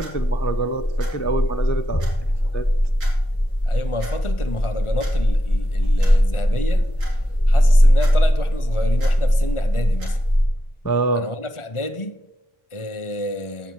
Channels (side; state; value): right; late; 1.4 ms